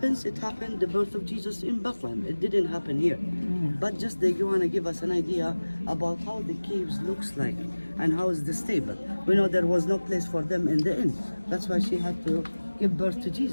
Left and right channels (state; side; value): inverted; both; correlation -1.00